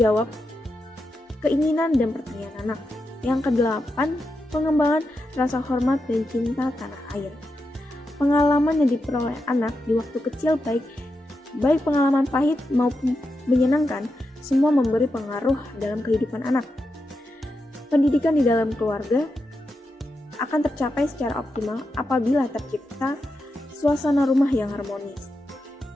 keinginan dan pertanyaan anak. Yang kedelapan, pengembangan rasa hormat dan cinta tanah air. Pengalaman yang diperoleh anak di waktu kecil baik pengalaman pahit maupun menyenangkan, semua memberi pengaruh dalam kehidupan anak. Pendidikan di dalam keluarga akan tercapai secara optimal apabila tercipta suasana rumah yang harmonis.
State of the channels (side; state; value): both; normal; correlation 0.87